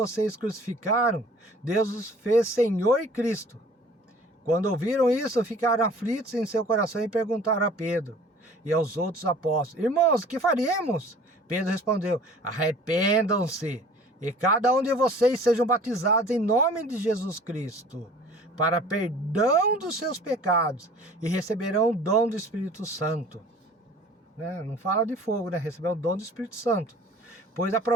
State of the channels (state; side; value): normal; both; correlation 0.48